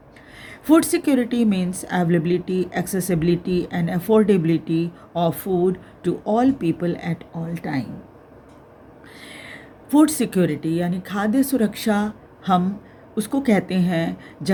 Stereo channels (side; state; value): both; identical; correlation 1.00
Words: Food security means availability, accessibility, and affordability of food to all people at all time. Food security यानी खाद्य सुरक्षा हम उसको कहते हैं